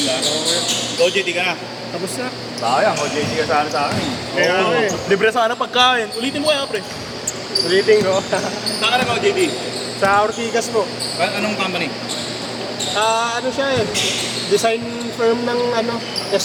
ka. OJT ka na. Tapos na. Sayang, OJT ka sana sa akin. Kaya Oo. nga eh. Libre sana pagkain. Ulitin mo kaya, pre. Ulitin ko. Saan ka na OJT? Sa Ortigas po. Anong company? Ano siya eh. Design firm ng ano,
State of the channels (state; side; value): identical; both; correlation 1.00